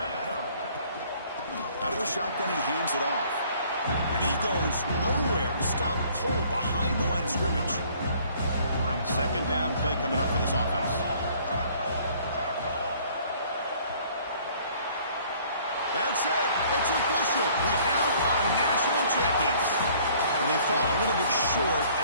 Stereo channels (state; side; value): inverted; both; correlation -0.57